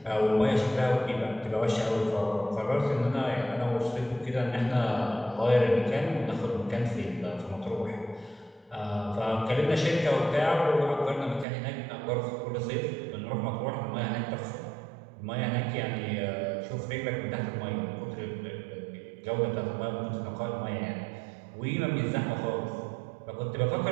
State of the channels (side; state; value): left; drops out; at 11.5 s